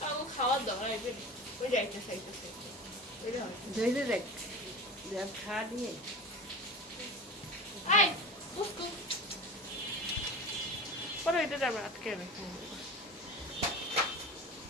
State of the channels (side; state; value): both; normal; correlation 0.32